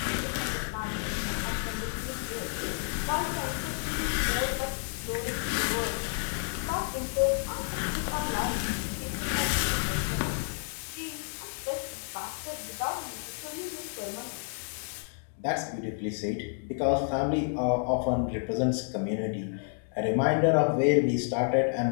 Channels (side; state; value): right; silent; 58 dB below the other